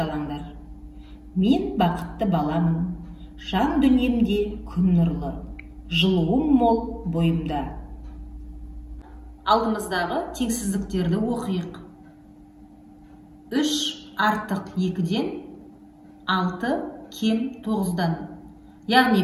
Мен бақытты баламын, жан дүниемде күн нұрлы, жылуым мол бойымда. Алдымыздағы теңсіздіктерді оқиық. 3 артық 2-ден 6 кем 9-дан. Яғни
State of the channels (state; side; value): identical; both; correlation 1.00